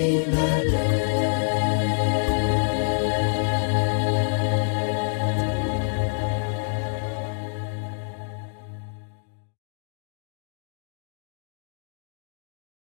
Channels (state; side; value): silent; right; digital silence